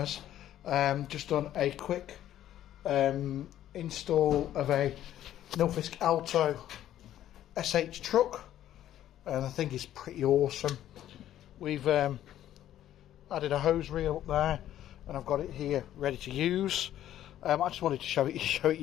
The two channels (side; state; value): right; quieter; 12.1 dB